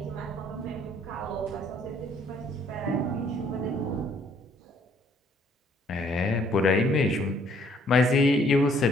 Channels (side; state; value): both; normal; correlation 0.63